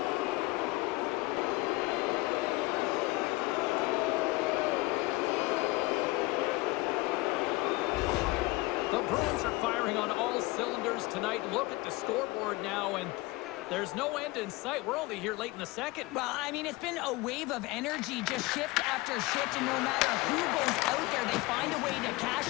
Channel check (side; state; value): right; quieter; 21.7 dB